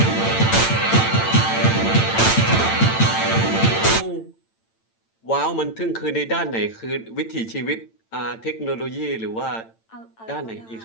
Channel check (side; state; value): right; late; 8.9 ms